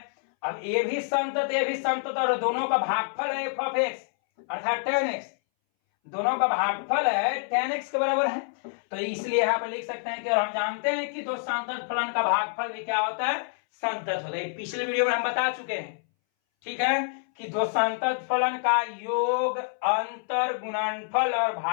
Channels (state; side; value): silent; right; 60 dB below the other